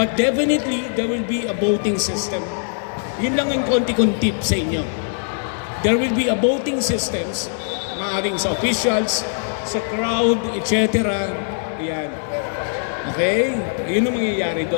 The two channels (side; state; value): right; silent; digital silence